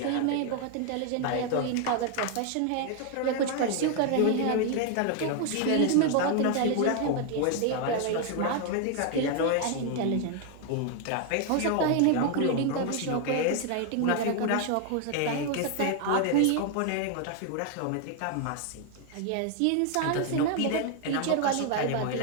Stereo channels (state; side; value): different; both; correlation 0.00